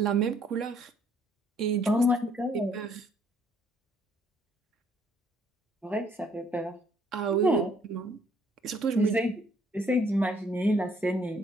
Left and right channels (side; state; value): both; normal; correlation 0.65